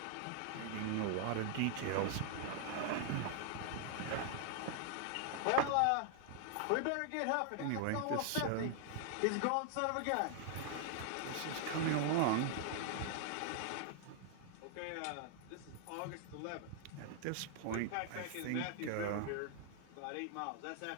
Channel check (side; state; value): both; different; correlation 0.00